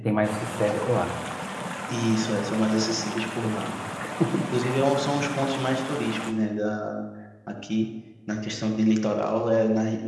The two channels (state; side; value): identical; both; correlation 1.00